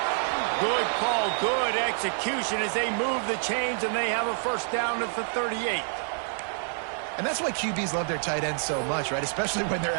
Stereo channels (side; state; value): left; silent; 60 dB below the other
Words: Good call, good execution as they move the chains, and they have a first down at the 38. And that's why QBs love their tight ends so much, right? Especially when they're